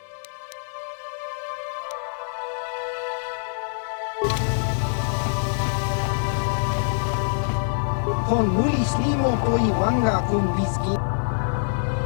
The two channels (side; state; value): right; silent; digital silence